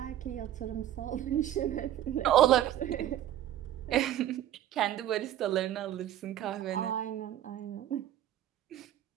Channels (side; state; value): left; quieter; 12.0 dB